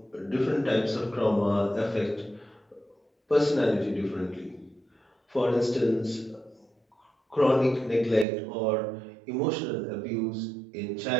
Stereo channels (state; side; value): drops out; left; at 8.2 s